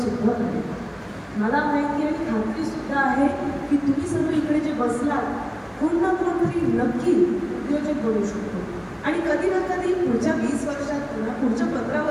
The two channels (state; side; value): identical; both; correlation 1.00